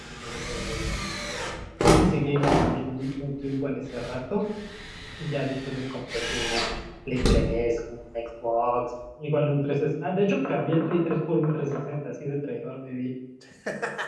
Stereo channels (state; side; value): identical; both; correlation 1.00